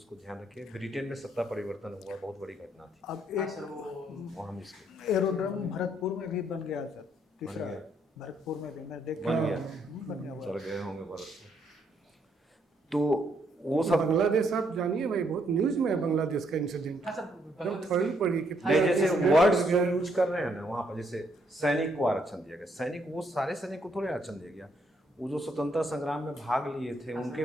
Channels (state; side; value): normal; both; correlation 0.72